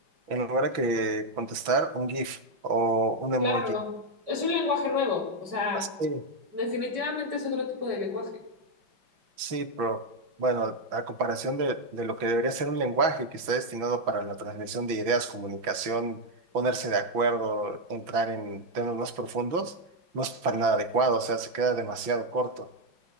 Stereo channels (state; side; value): late; left; 6.0 ms